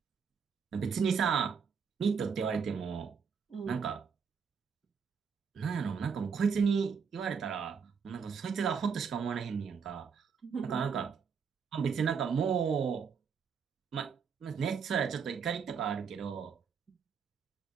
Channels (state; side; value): quieter; left; 6.2 dB